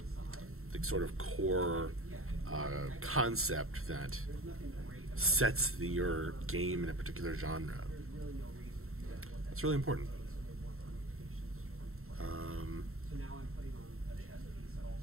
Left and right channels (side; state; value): left; late; 0.62 ms